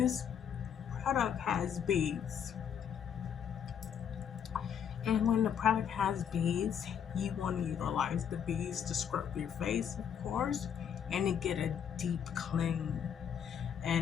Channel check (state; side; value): quieter; right; 8.3 dB